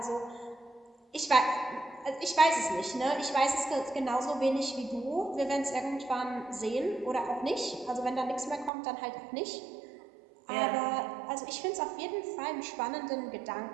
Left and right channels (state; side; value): drops out; left; at 8.7 s